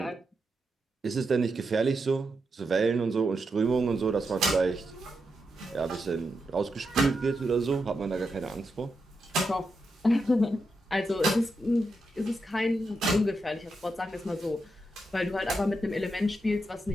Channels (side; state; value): both; normal; correlation 0.85